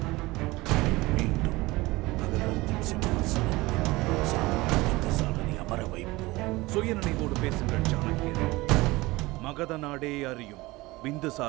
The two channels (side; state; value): left; quieter; 20.9 dB